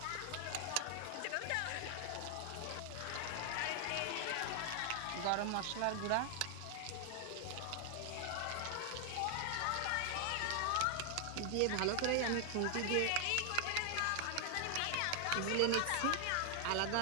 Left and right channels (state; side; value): different; both; correlation 0.00